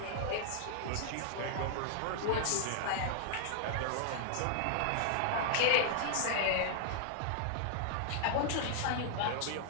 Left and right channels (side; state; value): both; different; correlation -0.01